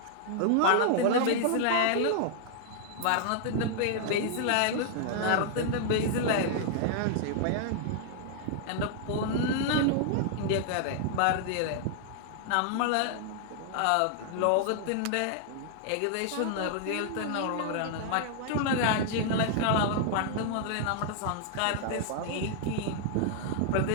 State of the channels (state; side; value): different; both; correlation -0.01